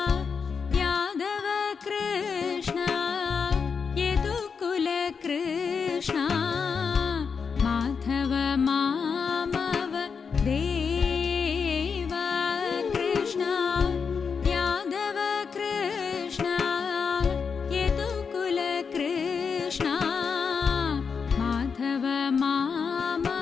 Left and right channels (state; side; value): quieter; right; 5.8 dB